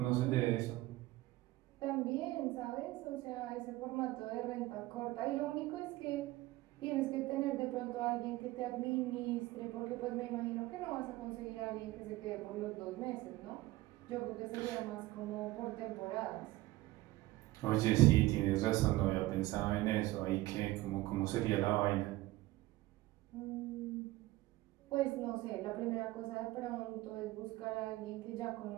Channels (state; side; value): quieter; left; 18.1 dB